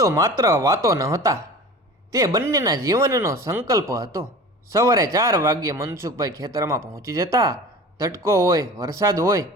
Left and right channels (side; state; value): both; normal; correlation 0.38